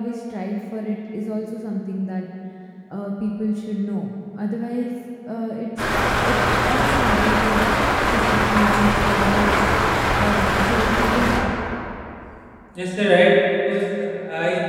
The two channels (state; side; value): identical; both; correlation 1.00